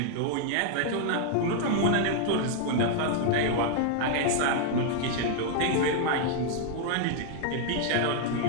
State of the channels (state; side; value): different; both; correlation 0.00